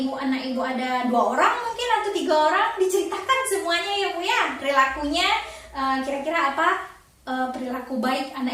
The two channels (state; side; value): identical; both; correlation 1.00